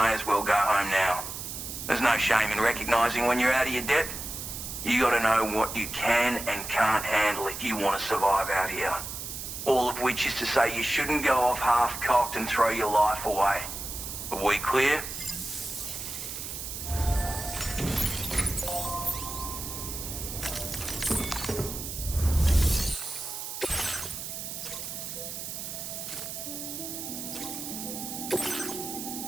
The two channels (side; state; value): right; noise; hiss, 7 dB below the sound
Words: as well go home now. There's no shame in recognizing when you're out of your depth. You gotta know what you can and can't handle if you want to survive out here. All of which is to say you shouldn't go off half-cocked and throw your life away. Are we clear?